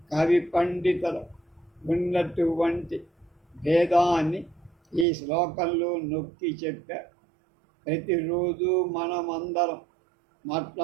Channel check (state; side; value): drops out; left; at 5.1 s